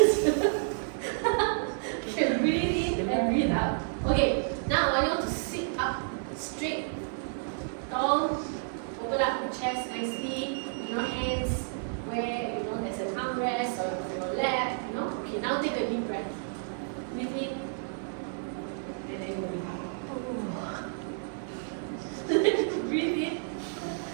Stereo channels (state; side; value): silent; left; 56 dB below the other